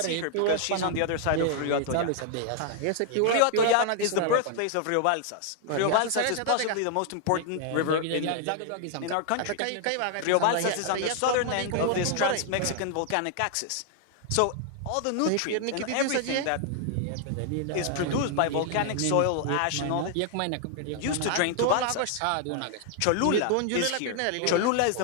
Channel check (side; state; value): both; different; correlation 0.00